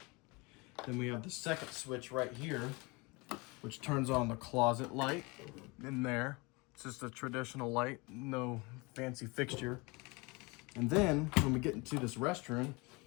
Then we have the second switch right here, which turns on the closet light in there. It's just a traditional light, no fancy fixture. And then when we get into this restroom,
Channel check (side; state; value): right; quieter; 26.6 dB